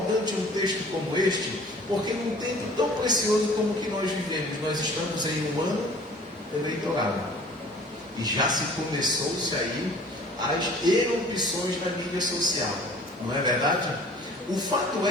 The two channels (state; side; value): normal; both; correlation 0.49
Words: um texto como este, porque num tempo tão precioso como o que nós vivemos, nós estamos em um ano eleitoral. E já se começou-se aí as erupções na mídia social. Não é verdade? O fato